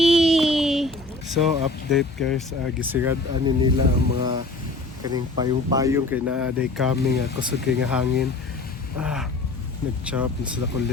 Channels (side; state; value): right; quieter; 3.1 dB